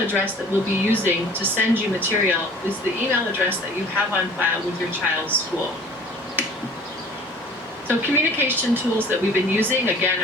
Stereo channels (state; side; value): normal; both; correlation 0.48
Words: that we'll be using to send you material is the email address that you have on file with your child's school. So communication tools that we've been using, again,